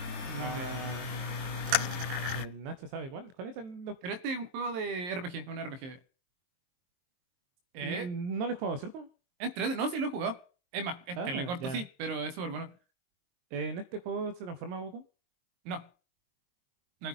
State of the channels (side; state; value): left; late; 23 ms